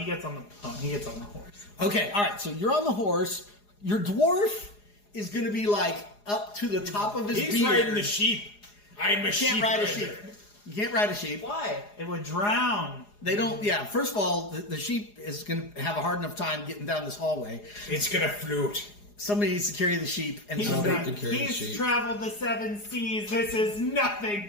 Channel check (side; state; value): right; late; 4.8 ms